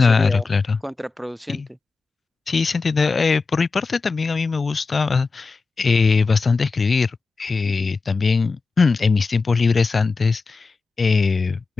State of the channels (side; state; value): right; quieter; 4.3 dB